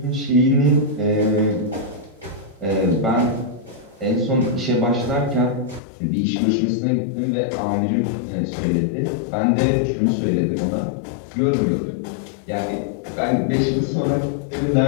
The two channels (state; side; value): drops out; right; at 5.8 s